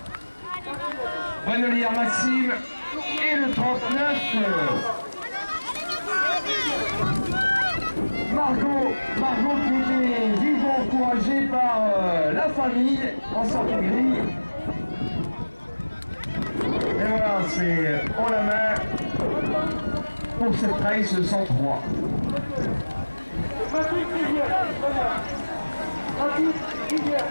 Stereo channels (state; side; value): inverted; both; correlation -1.00